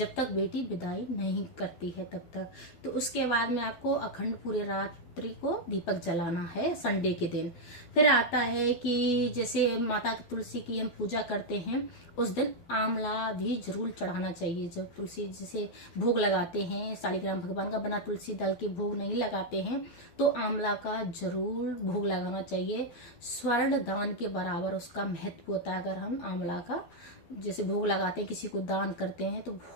तक बेटी विदाई नहीं करती है तब तक। तो उसके बाद में आपको अखंड पूरे रात नवरात्रि को दीपक जलाना है संडे के दिन। फिर आता है कि जैसे माता की तुलसी की हम पूजा करते हैं उस दिन आंवला भी जरूर चढ़ाना चाहिए। जब तुलसी जैसे भोग लगाते हैं, शालिग्राम भगवान का बना तुलसी दल के भोग नहीं लगाते हैं तो आंवला का जरूर भोग लगाना चाहिए। स्वर्ण दान के बराबर उसका महत्व होता है। अगर हम आंवला का जैसे भोग लगाते हैं, किसी को दान करते हैं तो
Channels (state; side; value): late; right; 12 ms